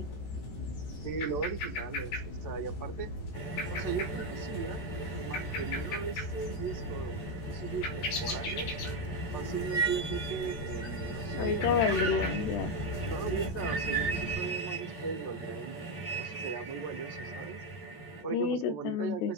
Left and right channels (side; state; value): right; late; 13 ms